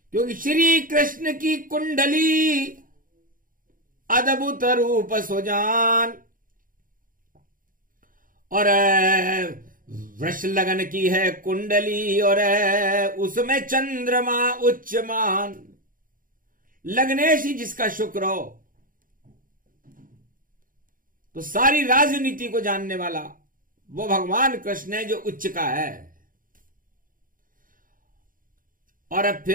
क्योंकि श्री कृष्ण की कुंडली अद्भुत रूप सुजान और वृष लगन की है कुंडली, और उसमें चंद्रमा उच्चमान। लग्नेश ही जिसका शुक्र हो, तो सारी राजनीति को जानने वाला वो भगवान कृष्ण है जो उच्च का है। और अब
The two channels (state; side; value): late; left; 0.40 ms